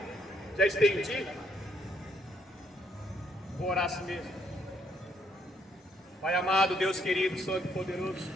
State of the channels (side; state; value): both; normal; correlation 0.71